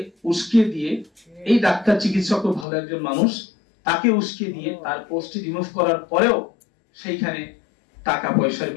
উস্কে দিয়ে, এই ডাক্তার চিকিৎসক ভালো একজন মানুষ, তাকে উস্কে দিয়ে তার পোস্টটি রিমুভ করার পরেও সেইখানে টাকা পয়সার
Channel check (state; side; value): drops out; right; at 2.7 s